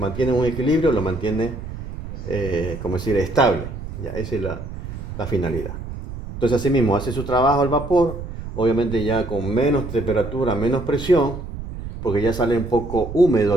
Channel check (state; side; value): noise; right; rumble, 9 dB below the sound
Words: un equilibrio, lo mantiene como decir, estable. Ya, esa es la finalidad. Entonces así mismo hace su trabajo el vapor, obviamente ya con menos temperatura, menos presión, porque ya sale un poco húmedo